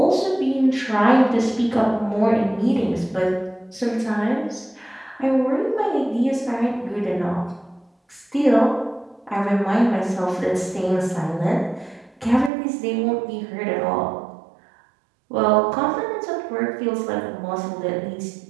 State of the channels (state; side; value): drops out; left; at 12.5 s